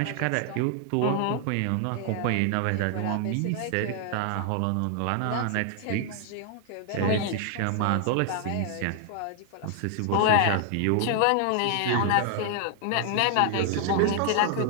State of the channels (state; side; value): different; both; correlation 0.00